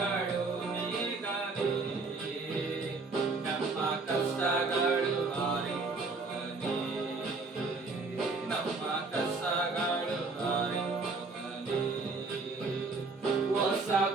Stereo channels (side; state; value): left; quieter; 3.9 dB